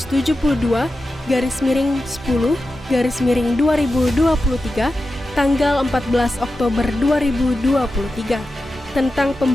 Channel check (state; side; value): normal; both; correlation 0.92